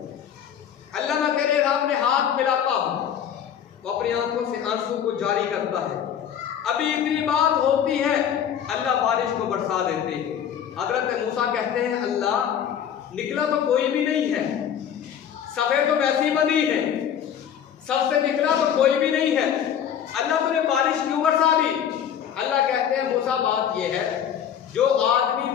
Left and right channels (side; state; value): right; quieter; 9.0 dB